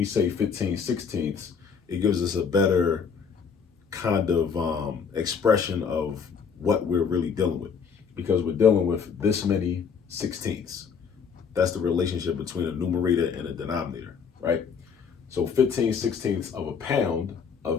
say 15 sixteenths, it gives us a better kind of expression of what we're really dealing with, because we're dealing with this many sixteenths. That's the relationship between a numerator and a denominator, right? So 15 sixteenths of a pound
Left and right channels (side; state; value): right; quieter; 6.3 dB